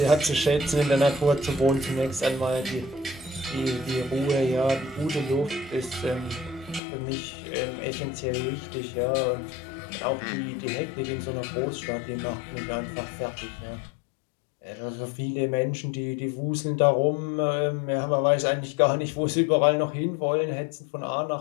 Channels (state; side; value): drops out; right; at 6.8 s